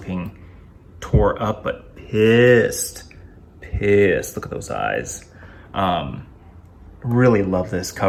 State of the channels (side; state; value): both; identical; correlation 1.00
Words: tore up but pissed. Look at those eyes. Really love this